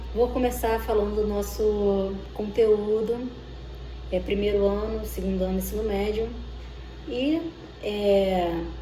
Vou começar falando do nosso conteúdo, primeiro ano, segundo ano do ensino médio, e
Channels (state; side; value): identical; both; correlation 1.00